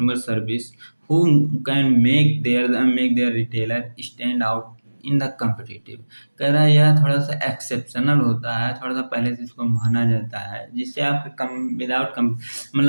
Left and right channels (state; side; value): inverted; both; correlation -1.00